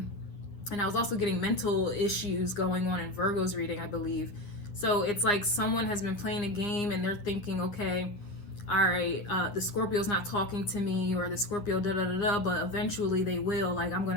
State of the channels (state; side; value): late; right; 10 ms